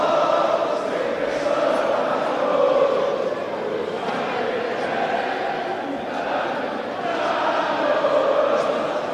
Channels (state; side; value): identical; both; correlation 1.00